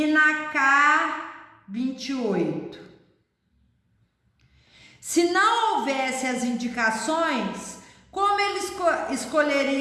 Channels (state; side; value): identical; both; correlation 1.00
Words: na K28. Se não houvesse as indicações, como eles